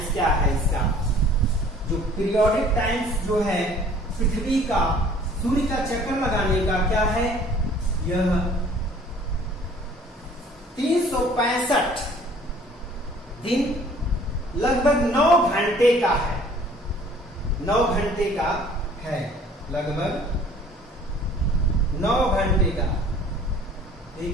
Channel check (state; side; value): normal; both; correlation 0.53